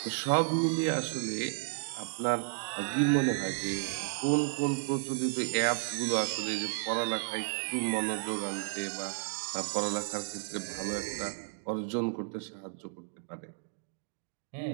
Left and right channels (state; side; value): silent; left; digital silence